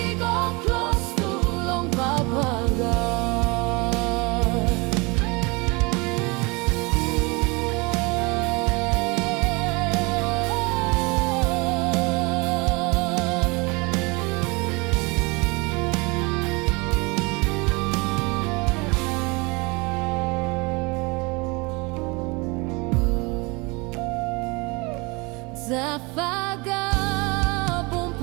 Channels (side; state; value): left; quieter; 27.3 dB